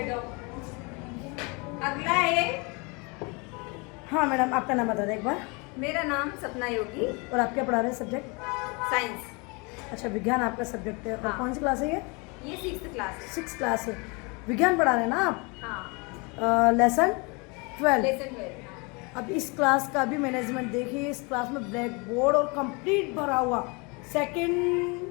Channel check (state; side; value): quieter; right; 29.7 dB